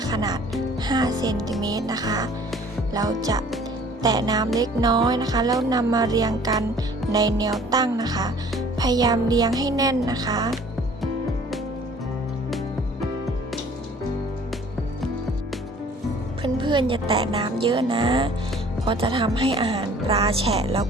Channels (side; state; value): both; normal; correlation 0.52